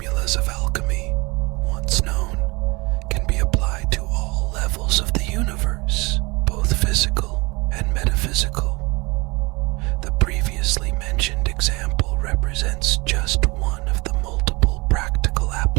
of alchemy, once known, can be applied to all levels of the universe, both physical and metaphysical. The previously mentioned example represents just one of the multiple practical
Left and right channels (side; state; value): left; quieter; 25.4 dB